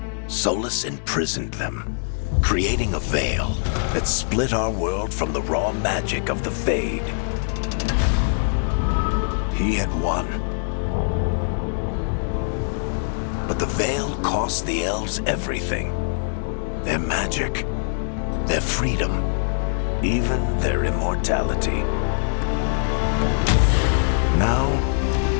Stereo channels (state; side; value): silent; right; digital silence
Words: Solus imprisoned them, creating a veil that split our world from the raw magic of the Fade. He had won. But the veil cost the elves everything. Their magic, their freedom, even their immortality. Now,